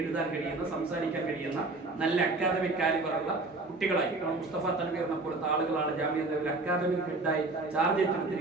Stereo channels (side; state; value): left; quieter; 3.3 dB